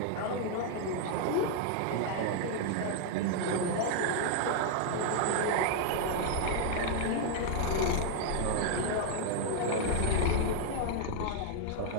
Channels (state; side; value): different; both; correlation 0.00